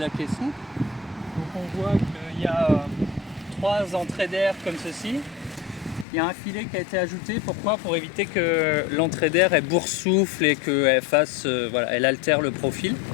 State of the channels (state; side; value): drops out; right; at 6.1 s